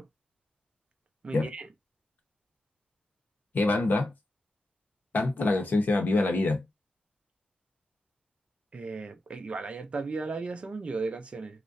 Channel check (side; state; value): both; normal; correlation 0.89